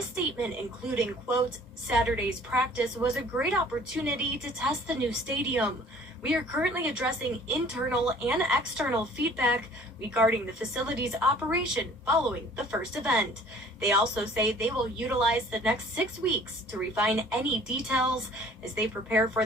statement, including, quote, Saturday's practice was a great opportunity to test the new stadium. We are currently addressing internal and external feedback regarding the facility's operation following the first event. They also say they will utilize the next 6 weeks to refine any details as they prepare for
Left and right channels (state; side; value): normal; both; correlation 0.52